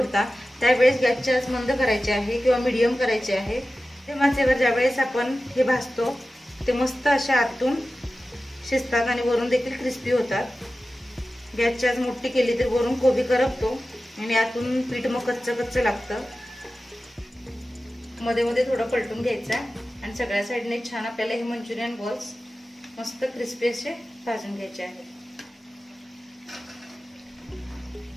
त्यावेळेस गॅसची आच मंद करायची आहे किंवा मीडियम करायची आहे। ते माचेवर ज्यावेळेस आपण हे भाजतो ते मस्त अशा आतून शिजतात आणि वरून देखील क्रिस्पी होतात। गॅसची आच मोठी केली तर वरून कोबी करपतो आणि आतून पीठ मग कच्चं कच्चं लागतं। मध्ये मध्ये थोडं पलटून घ्यायचं आणि सगळ्या साईडने छान आपल्याला हे मंचुरियन बॉल्स मस्त क्रिस्पी असे भाजून घ्यायचे आहेत।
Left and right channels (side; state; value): both; normal; correlation 0.95